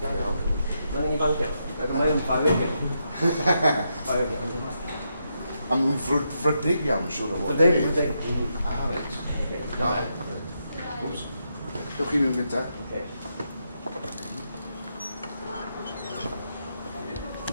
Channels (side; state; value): both; inverted; correlation -0.82